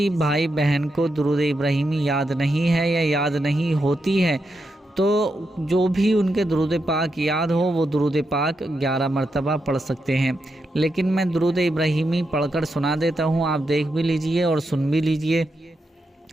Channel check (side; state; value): both; normal; correlation 0.85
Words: بھائی بہن کو درود ابراہیمی یاد نہیں ہے یا یاد نہیں ہوتی ہے تو جو بھی ان کے درود پاک یاد ہو وہ درود پاک 11 مرتبہ پڑھ سکتے ہیں، لیکن میں درود ابراہیمی پڑھ کر سنا دیتا ہوں، آپ دیکھ بھی لیجئے اور سن بھی لیجئے۔